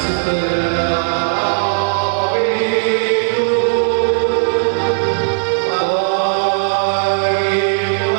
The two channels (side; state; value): left; silent; digital silence